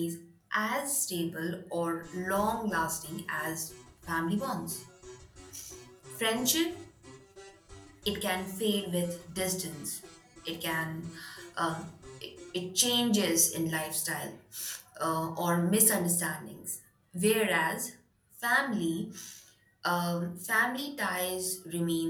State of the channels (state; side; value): identical; both; correlation 1.00